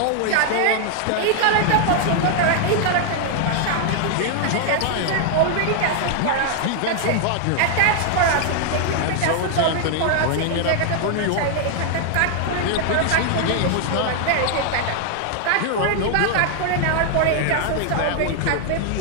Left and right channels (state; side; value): different; both; correlation 0.00